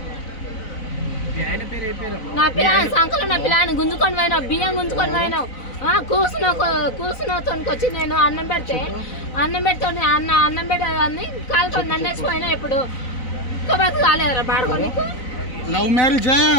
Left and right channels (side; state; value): right; late; 4.0 ms